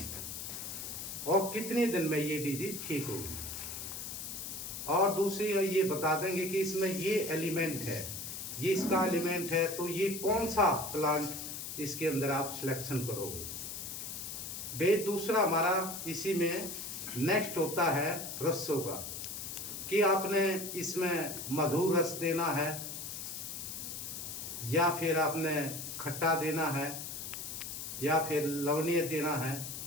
और कितने दिन में ये डिजीज ठीक होगी। और दूसरी ये बता देंगे कि इसमें ये एलिमेंट है, ये इसका एलिमेंट है, तो ये कौन सा प्लांट इसके अंदर आप सिलेक्शन करोगे। दूसरा हमारा इसी में नेक्स्ट होता है रसों का, कि आपने इसमें मधुर रस देना है या फिर आपने खट्टा देना है या फिर लवणीय देना है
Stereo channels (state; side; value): noise; left; hiss, 7 dB below the sound